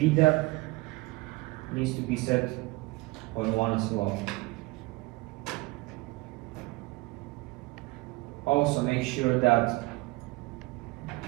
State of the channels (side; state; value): left; quieter; 22.5 dB